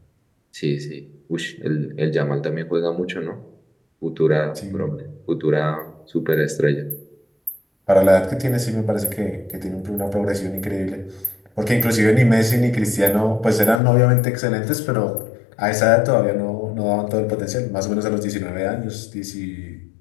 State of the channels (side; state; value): right; drops out; at 13.8 s